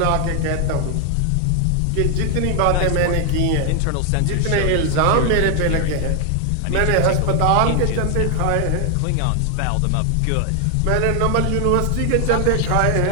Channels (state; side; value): different; both; correlation 0.00